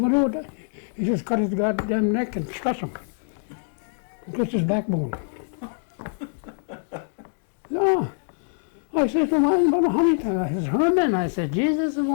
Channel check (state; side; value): silent; right; digital silence